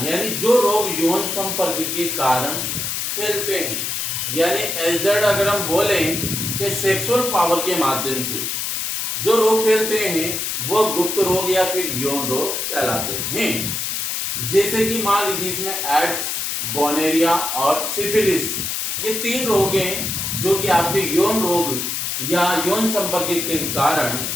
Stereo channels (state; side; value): noise; left; hiss, 2 dB below the sound